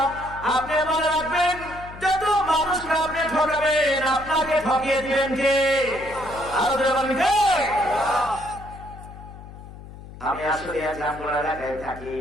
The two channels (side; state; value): left; noise; hum, 15 dB below the sound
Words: আপনি মনে রাখবেন, যত মানুষকে আপনি ঠকাবেন আপনাকে ঠকিয়ে দিবেন কে? আরো বলেন কে? আমি আসলে জামগড়া এলাকায় থাকি,